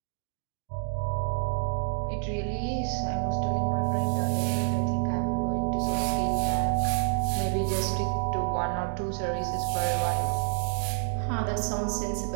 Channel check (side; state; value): left; silent; 59 dB below the other